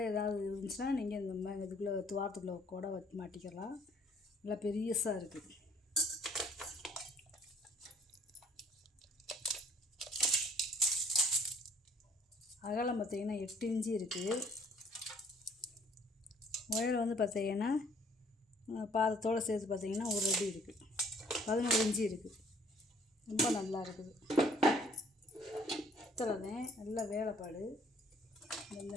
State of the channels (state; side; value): normal; both; correlation 0.60